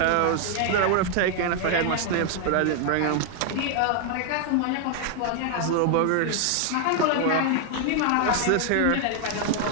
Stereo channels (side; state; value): both; different; correlation 0.00